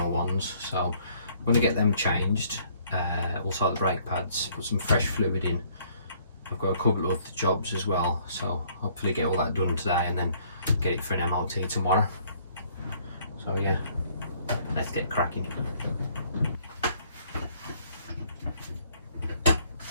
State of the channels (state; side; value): inverted; both; correlation -0.62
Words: ones. So I'm going to get them changed. Also the brake pads, put some fresh fluid in. I've got a couple of other jobs as well, so hopefully get all that done today and then get it for an MOT tomorrow. So yeah, let's get cracking.